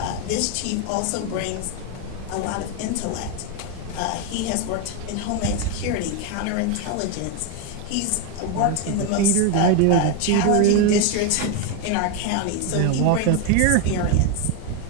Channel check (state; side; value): different; both; correlation 0.02